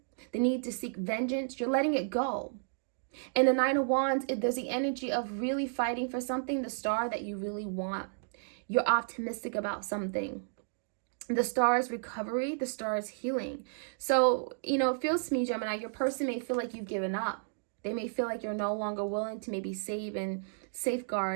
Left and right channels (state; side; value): silent; left; digital silence